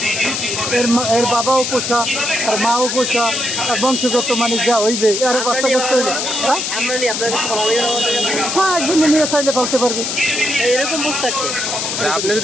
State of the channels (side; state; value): left; noise; hiss, 2 dB below the sound